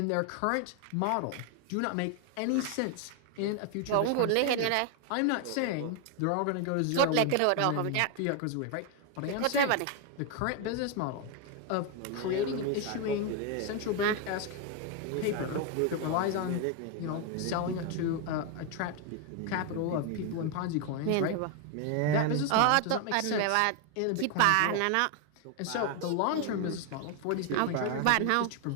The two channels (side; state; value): both; different; correlation 0.01